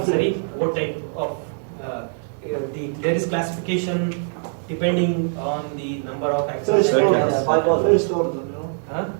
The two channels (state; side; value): silent; left; 60 dB below the other